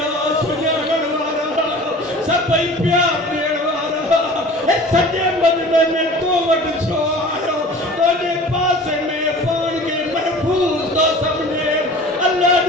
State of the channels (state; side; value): normal; both; correlation 0.42